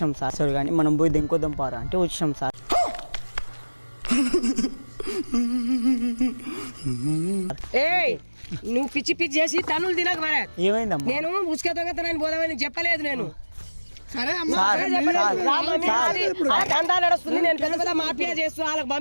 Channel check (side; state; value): both; inverted; correlation -1.00